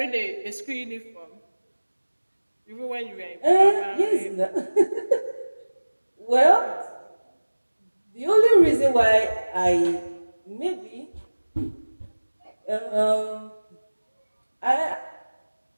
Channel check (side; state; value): both; inverted; correlation -1.00